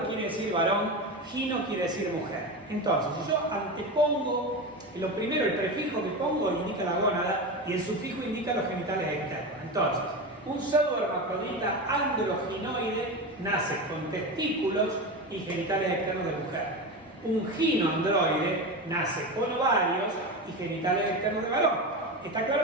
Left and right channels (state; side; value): normal; both; correlation 0.22